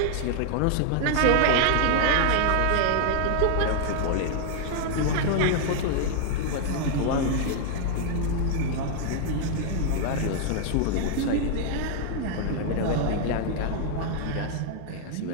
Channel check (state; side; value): different; both; correlation 0.00